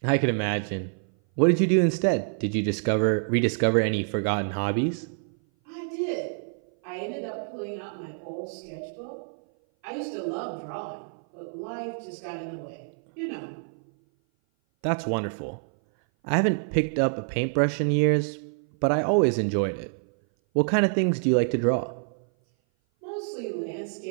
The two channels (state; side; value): silent; left; 57 dB below the other